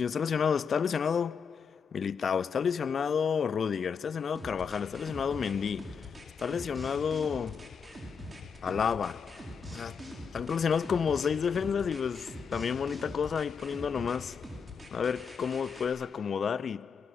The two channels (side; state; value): right; quieter; 6.2 dB